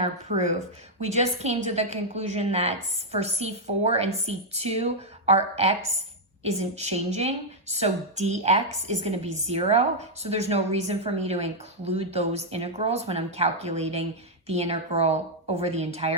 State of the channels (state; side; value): normal; both; correlation -0.03